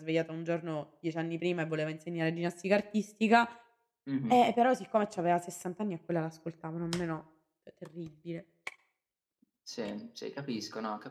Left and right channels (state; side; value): identical; both; correlation 1.00